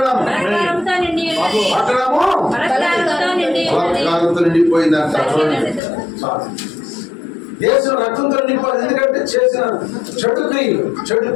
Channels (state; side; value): drops out; right; at 5.8 s